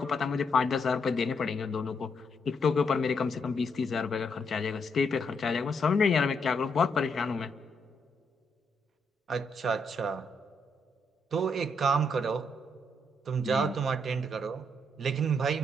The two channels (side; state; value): both; normal; correlation 0.77